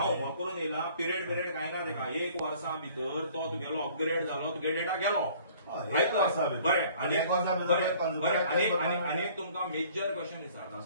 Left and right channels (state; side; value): inverted; both; correlation -0.54